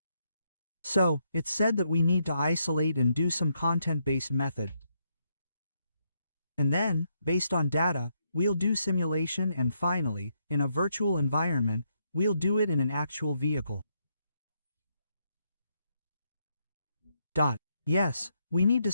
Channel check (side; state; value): both; inverted; correlation -0.78